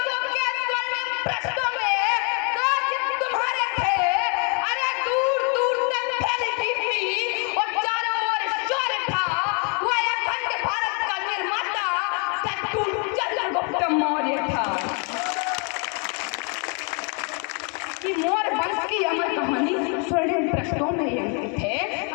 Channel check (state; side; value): quieter; right; 36.3 dB